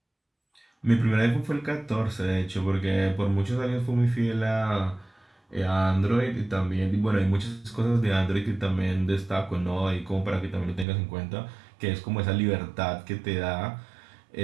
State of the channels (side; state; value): left; drops out; at 10.9 s